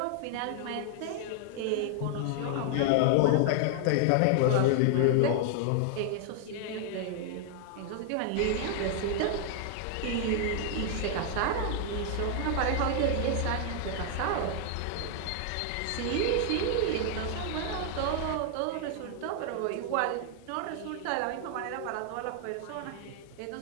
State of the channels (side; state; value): both; different; correlation 0.00